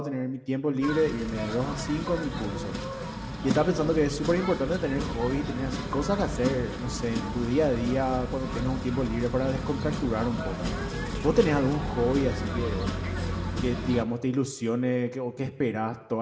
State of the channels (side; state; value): both; identical; correlation 1.00